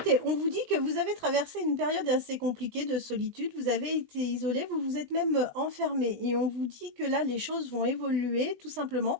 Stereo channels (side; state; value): left; late; 20 ms